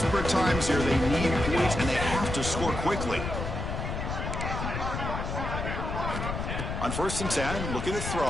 times here. They need points, and they have to score quickly. On 1st and 10, looking to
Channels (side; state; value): left; noise; rumble, 4 dB below the sound